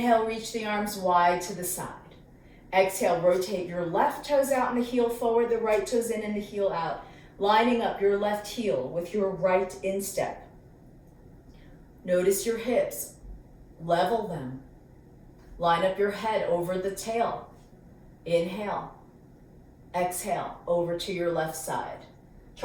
reach the arms wide to the side. Exhale, rotate your left toes out and the heel forward, the right toes in and the heel out. lining up your left heel with your right instep. Notice your hips, level them. Line up your head over the tail. Inhale. Exhale, over to your left side.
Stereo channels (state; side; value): identical; both; correlation 1.00